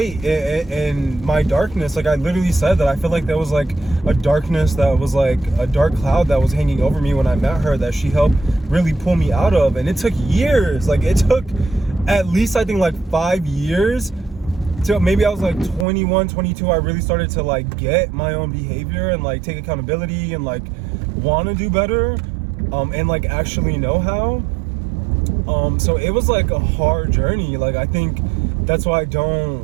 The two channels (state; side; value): drops out; left; at 15.9 s